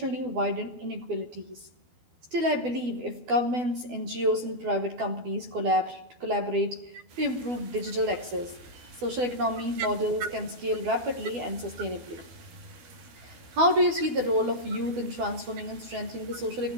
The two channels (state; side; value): late; left; 12 ms